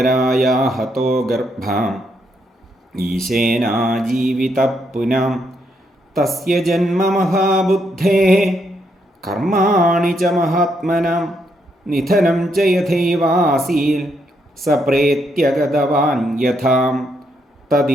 ഹതോ ഗർഭാം ഈശേനാജീവിതഃ പുനാം തസ്യ ജന്മ മഹാബുദ്ധേഃ കർമാണി ച മഹാത്മനാം നിധനം ച യഥൈവാസീൽ സപ്രേത്യഗതവാൻ യഥാം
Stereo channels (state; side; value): normal; both; correlation 0.77